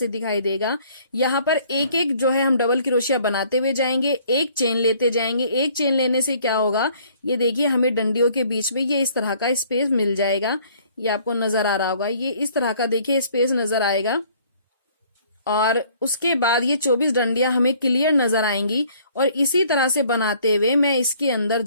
दिखाई देगा। यहाँ पर एक एक जो है हम डबल क्रोशिया बनाते हुए जाएंगे, एक चेन लेते जाएंगे। एक चेन लेने से क्या होगा, ये देखिए हमें डंडियों के बीच में ये इस तरह का स्पेस मिल जाएगा। ये आपको नजर आ रहा होगा, ये इस तरह का देखिए स्पेस नजर आएगा। और उसके बाद ये 24 डंडियां हमें क्लियर नजर आएंगी और इसी तरह से बनाते हुए मैं इसके अंदर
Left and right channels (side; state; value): both; inverted; correlation -0.59